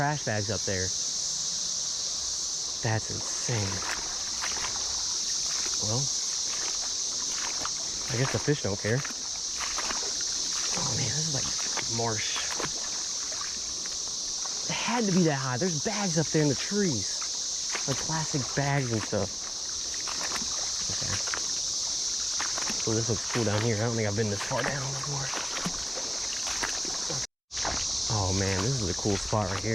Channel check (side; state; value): both; identical; correlation 1.00